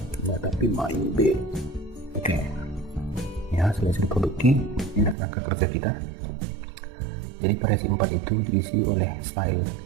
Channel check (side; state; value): left; drops out; at 5.2 s